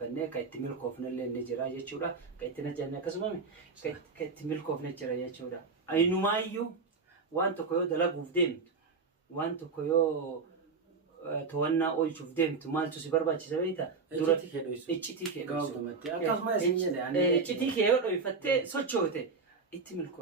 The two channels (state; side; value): quieter; left; 4.6 dB